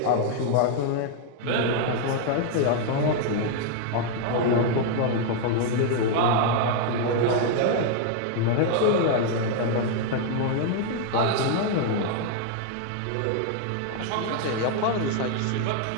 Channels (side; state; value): both; different; correlation 0.00